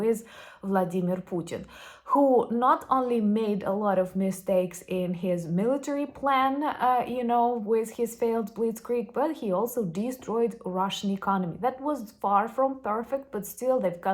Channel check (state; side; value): identical; both; correlation 1.00